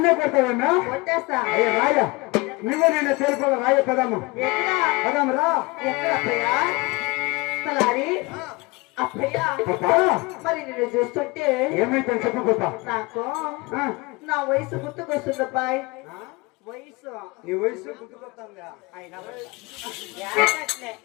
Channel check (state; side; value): quieter; right; 24.6 dB